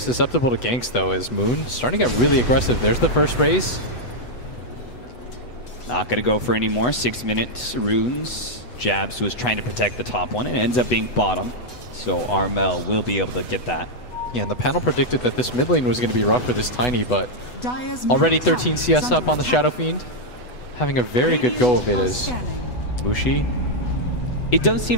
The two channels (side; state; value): right; late; 7.8 ms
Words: to ganks, though, as Moon starting to get really aggressive. There's the first raise. Not going to go for any more. 6 minutes runes. Jabs was trying to protect the top one, and it ends up being bottom. So Armel will be able to get that. Yeah, and the panel predicted that this mid lane was going to be rough for this Tiny, but already 13 CS up on the Shadow Fiend. Having a very good go of it as Mushi. It does